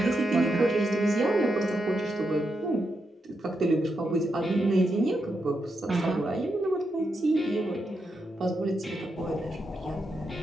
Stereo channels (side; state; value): both; normal; correlation 0.84